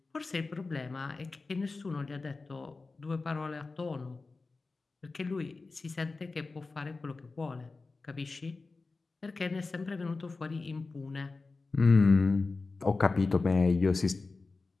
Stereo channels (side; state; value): right; quieter; 3.8 dB